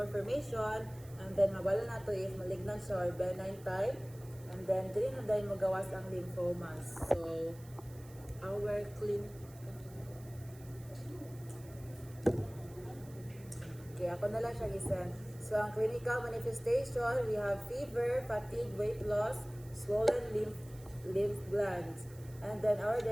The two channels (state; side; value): noise; right; hiss, 22 dB below the sound